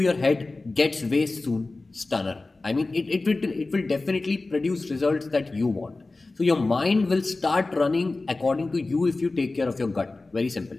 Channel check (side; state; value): right; quieter; 3.3 dB